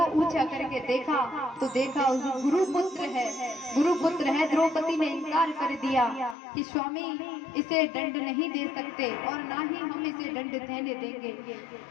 ऊंचा करके देखा तो देखा गुरुपुत्र है। द्रौपदी ने इनकार कर दिया कि स्वामी इसे दंड नहीं दे सकते और ना ही हम इसे दंड देने देंगे।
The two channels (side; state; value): right; drops out; at 6.4 s